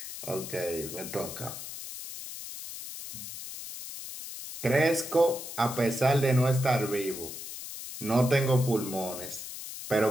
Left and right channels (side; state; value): left; noise; hiss, 10 dB below the sound